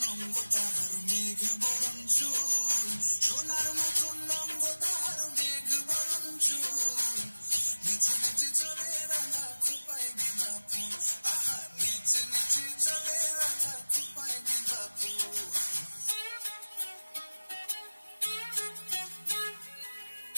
লঙ্গ তাহার মেঘ বরণ চুল, সোনার মতন লঙ্গ তাহার মেঘ বরণ চুল, নিচে নিচে চলে রাধা খোপায় গেঁদা ফুল, আহা নিচে নিচে চলে রাধা খোপায় গেঁদা ফুল।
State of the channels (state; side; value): inverted; both; correlation -1.00